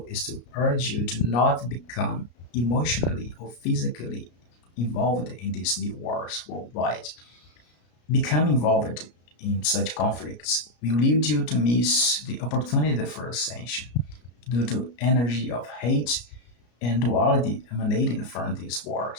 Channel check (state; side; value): late; right; 33 ms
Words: is to urge you to not become emotionally or physically involved in these new wars worldwide. Become involved in such conflicts will lead you to miss the opportunity for ascension due to energy of hate and duality emanating from these